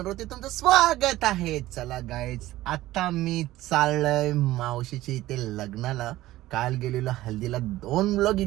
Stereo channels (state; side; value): quieter; left; 16.1 dB